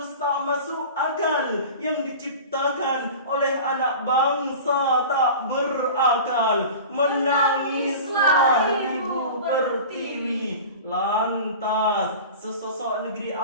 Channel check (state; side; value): inverted; both; correlation -0.36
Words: tak masuk akal yang diciptakan oleh anak bangsa tak berakal. Menangislah Ibu Pertiwi. Lantas, sesosok negeri